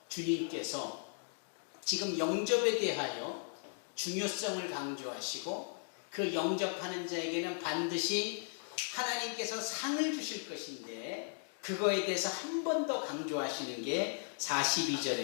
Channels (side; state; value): right; silent; 53 dB below the other